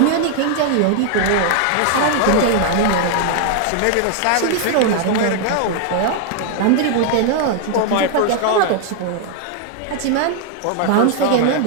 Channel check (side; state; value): both; different; correlation 0.00